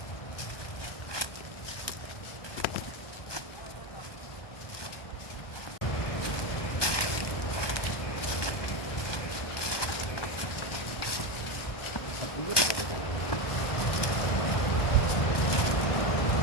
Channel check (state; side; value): late; right; 1.2 ms